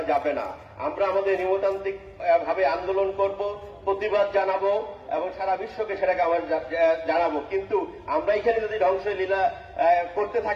যাবে না। আমরা আমাদের নিয়মতান্ত্রিক ভাবে আন্দোলন করব, প্রতিবাদ জানাবো এবং সারা বিশ্বকে সেটাকে আমরা জানাবো। কিন্তু আমরা এখানে যদি ধ্বংসলীলা করতে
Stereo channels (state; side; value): identical; both; correlation 1.00